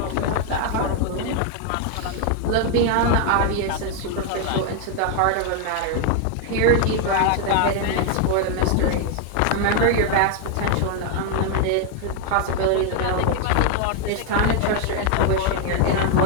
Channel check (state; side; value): different; both; correlation 0.00